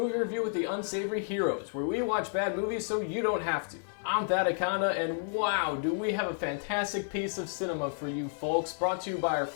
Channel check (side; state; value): right; silent; digital silence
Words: review with the Unsavory Heroes, where we watch bad movies so you don't have to. I'm Thadakonda, and wow, do we have a fantastic piece of cinema for you folks, brought to you by our